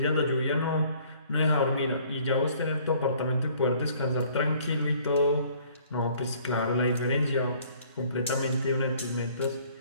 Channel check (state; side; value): inverted; both; correlation -0.57